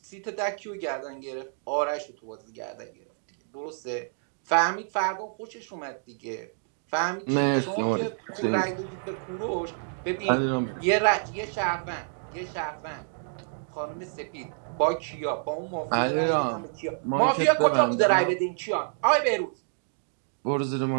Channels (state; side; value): silent; left; digital silence